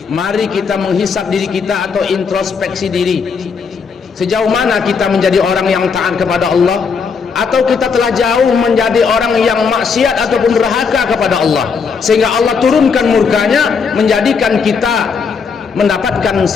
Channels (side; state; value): right; quieter; 5.6 dB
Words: mari kita menghisap diri kita atau introspeksi diri. Sejauh mana kita menjadi orang yang taat kepada Allah, atau kita telah jauh menjadi orang yang maksiat ataupun durhaka kepada Allah, sehingga Allah turunkan murkanya, menjadikan kita mendapatkan